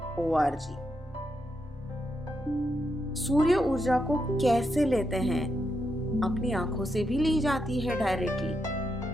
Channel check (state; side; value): normal; both; correlation 0.83